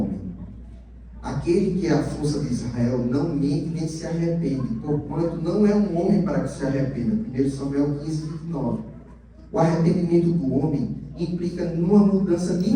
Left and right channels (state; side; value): identical; both; correlation 1.00